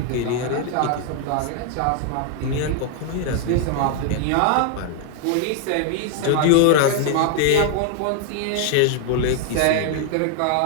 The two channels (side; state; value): both; different; correlation 0.00